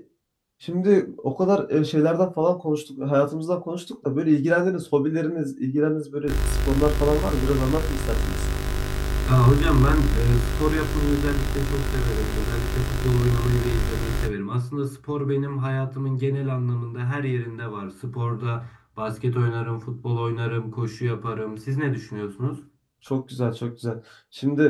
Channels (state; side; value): identical; both; correlation 1.00